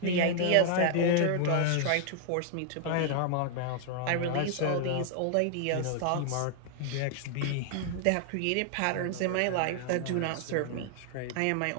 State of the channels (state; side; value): different; both; correlation 0.00